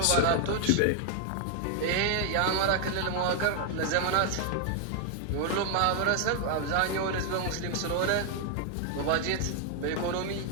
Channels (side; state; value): both; different; correlation 0.00